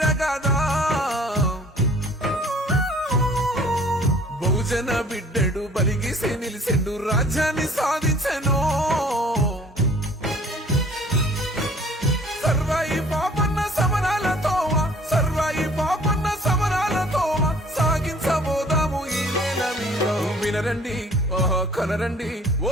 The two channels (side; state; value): both; normal; correlation 0.54